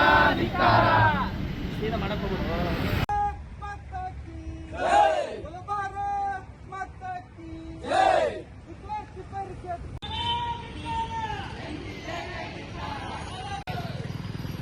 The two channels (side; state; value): both; identical; correlation 1.00